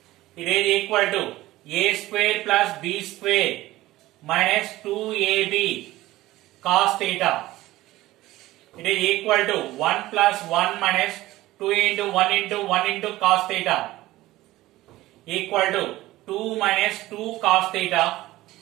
It is equal to A square plus B square minus 2AB cos theta. It is equal to 1 plus 1 minus 2 into 1 into 1 into cos theta equal to 2 minus 2 cos theta.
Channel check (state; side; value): quieter; left; 17.1 dB